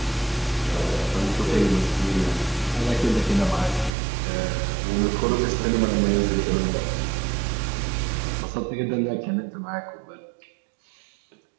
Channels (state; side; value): drops out; left; at 3.9 s